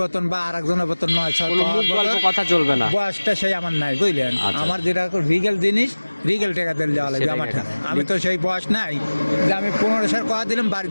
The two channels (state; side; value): inverted; both; correlation -1.00